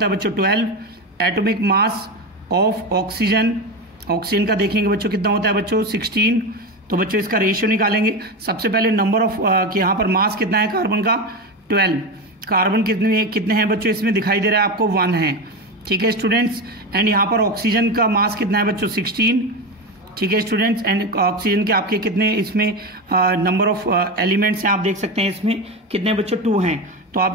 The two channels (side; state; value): both; normal; correlation 0.18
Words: है बच्चों 12। Atomic mass of oxygen, oxygen का देखेंगे बच्चों कितना होता है बच्चों 16। तो बच्चों इसका रेशियो निकालेंगे। सबसे पहले नंबर ऑफ यहाँ पर मास कितना है कार्बन का 12। कार्बन कितने हैं बच्चों इसमें दिखाई दे रहा है आपको 1 है। ठीक है स्टूडेंट्स, एंड यहाँ पर ऑक्सीजन का मास कितना है बच्चों 16। ठीक है स्टूडेंट्स, एंड ऑक्सीजन के आपके कितने इसमें नंबर ऑफ एलिमेंट्स हैं आप देख सकते हैं इसमें कितने बच्चों 2 हैं। तो